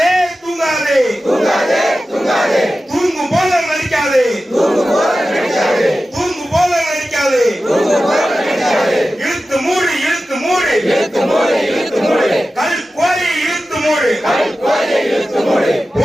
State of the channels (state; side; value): normal; both; correlation 0.94